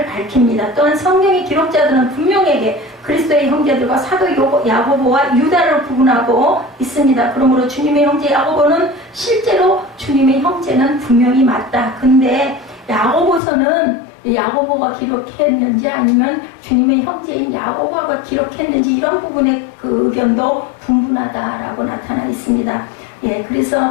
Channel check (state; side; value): drops out; right; at 13.4 s